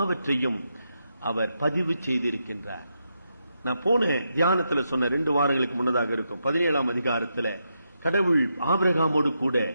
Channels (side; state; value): both; inverted; correlation -0.83